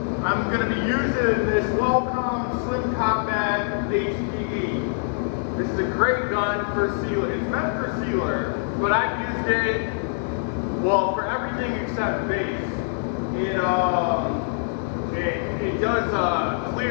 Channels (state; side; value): silent; right; digital silence